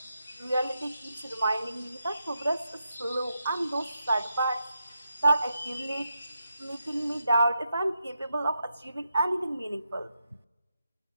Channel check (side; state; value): both; inverted; correlation -0.86